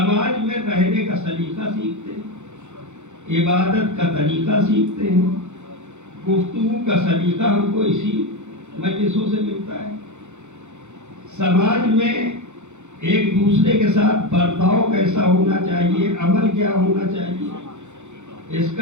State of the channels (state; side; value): late; left; 0.83 ms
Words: میں رہنے کا سلیقہ سیکھتے ہیں، عبادت کا طریقہ سیکھتے ہیں، گفتگو کا سلیقہ ہم کو اسی مجلسوں سے ملتا ہے. سماج میں ایک دوسرے کے ساتھ برتاؤ کیسا ہونا چاہیے، عمل کیا ہونا چاہیے، اس